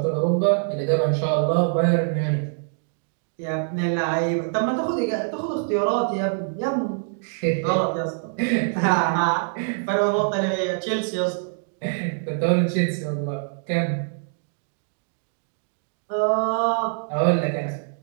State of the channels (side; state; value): left; silent; digital silence